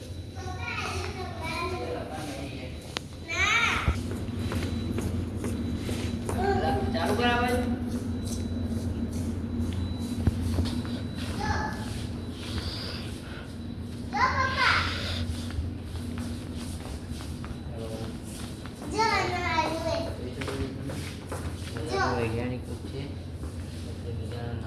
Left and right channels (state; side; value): identical; both; correlation 1.00